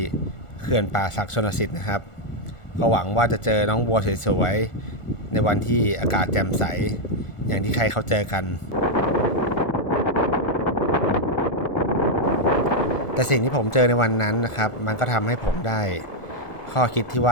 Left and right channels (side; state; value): right; late; 1.4 ms